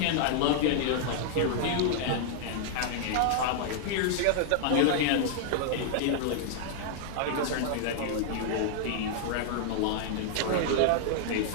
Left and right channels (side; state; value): both; different; correlation -0.01